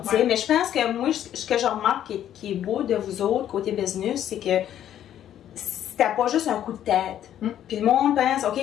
Tu sais, mais je pense que moi, ce que je remarque qui est beau de vous autres, côté business, c'est que c'était pas juste un coup de tête. Puis le monde pense, OK,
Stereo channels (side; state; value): right; quieter; 10.9 dB